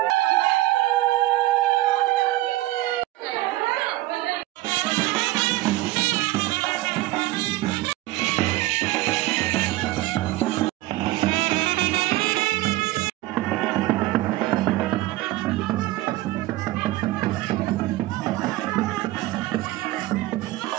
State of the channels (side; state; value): left; quieter; 17.6 dB